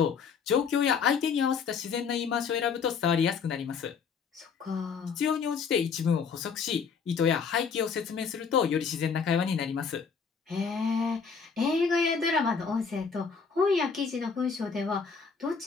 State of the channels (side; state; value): right; quieter; 5.9 dB